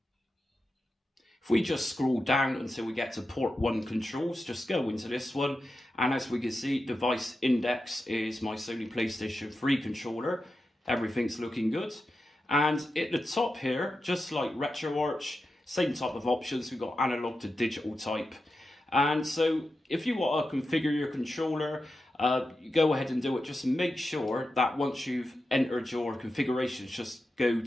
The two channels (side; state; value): both; normal; correlation 0.90